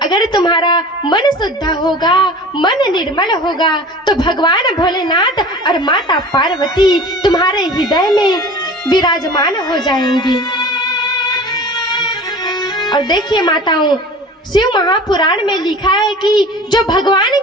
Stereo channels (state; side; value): normal; both; correlation 0.40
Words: अगर तुम्हारा मन शुद्ध होगा, मन निर्मल होगा, तो भगवान भोलेनाथ और माता पार्वती तुम्हारे हृदय में विराजमान हो जाएंगी। और देखिए माताओं, शिव महापुराण में लिखा है कि जो भगवान